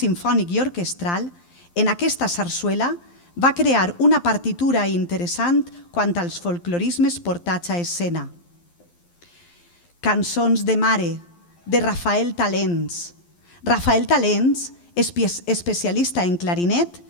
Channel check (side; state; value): right; late; 12 ms